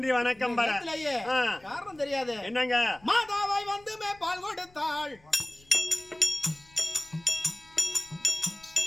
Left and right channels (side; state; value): left; noise; rumble, 28 dB below the sound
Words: வணக்கம் காரணம் தெரியாது என்னங்க மாதாவாய் வந்து பால் கொடுத்தாள்